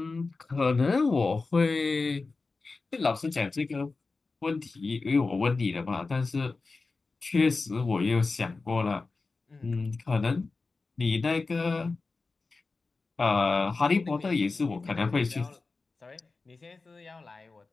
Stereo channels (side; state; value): right; quieter; 3.9 dB